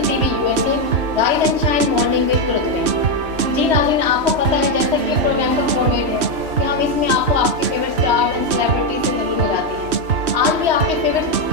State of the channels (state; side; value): late; left; 3.1 ms